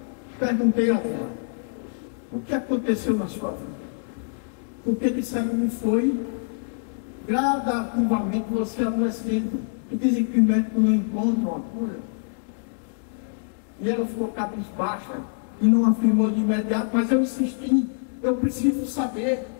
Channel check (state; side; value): silent; right; 62 dB below the other